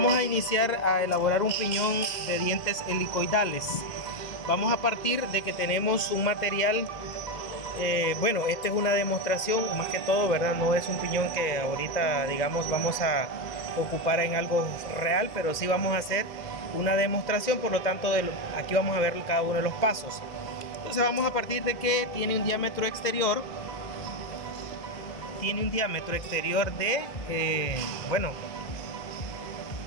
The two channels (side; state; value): right; late; 2.1 ms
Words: a iniciar a elaborar un piñón de dientes helicoidales. Vamos a partir de que tenemos un material, bueno, esta es una demostración más que todo, ¿verdad? No es un piñón que ahorita, digamos, vamos a ocupar en algo real, pero sí vamos a hacer una demostración, por lo tanto, aquí vamos a ver cada uno de los pasos. Entonces vamos a partir de que tiene un diámetro exterior. De, bueno,